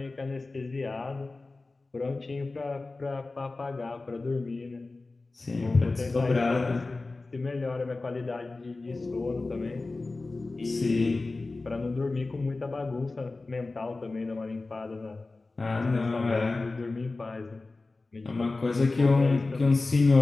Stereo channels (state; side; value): quieter; right; 3.4 dB